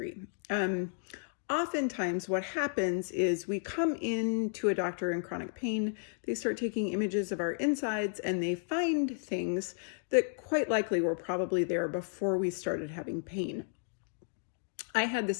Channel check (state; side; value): silent; right; digital silence